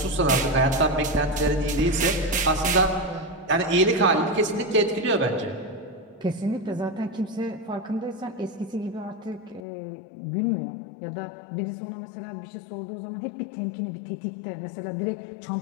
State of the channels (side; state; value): right; drops out; at 9.7 s